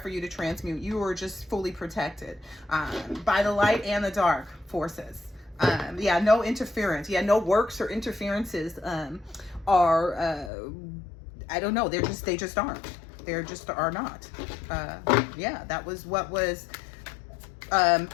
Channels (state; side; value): drops out; right; at 10.5 s